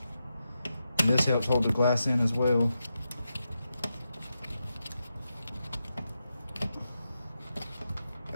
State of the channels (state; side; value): inverted; both; correlation -0.88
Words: And this helps hold the glass in as well.